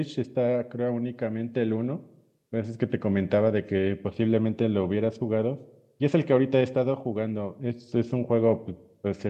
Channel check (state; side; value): identical; both; correlation 1.00